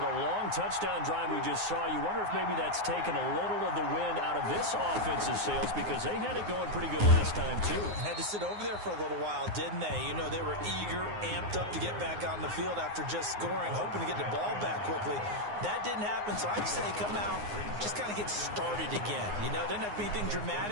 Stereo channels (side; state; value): left; late; 9.6 ms